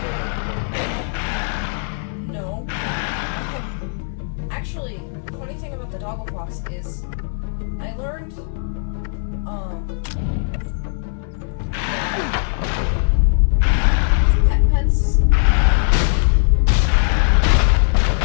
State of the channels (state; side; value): silent; right; 66 dB below the other